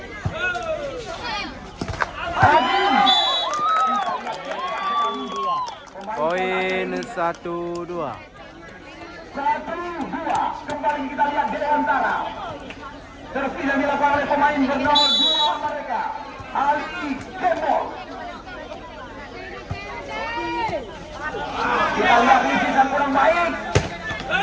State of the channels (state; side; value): identical; both; correlation 1.00